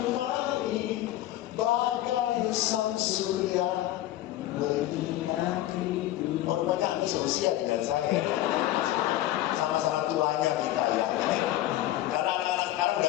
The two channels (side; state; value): right; quieter; 14.3 dB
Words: bagai sang surya menyinari. Oh, rupanya ini seusia dengan saya. Sama-sama tuanya kita ya. Karena anak-anak sekarang